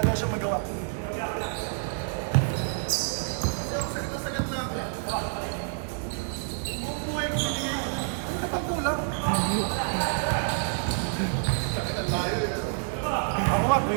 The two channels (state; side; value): silent; left; 59 dB below the other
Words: daw siyang magawa. Ako nga,